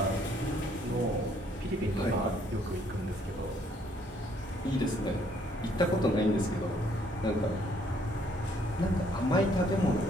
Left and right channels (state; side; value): normal; both; correlation 0.66